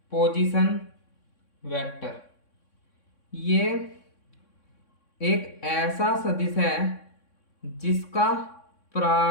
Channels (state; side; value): late; right; 3.6 ms